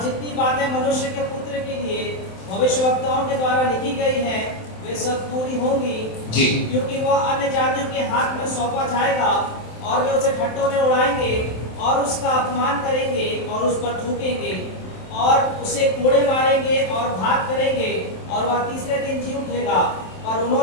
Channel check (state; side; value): late; right; 27 ms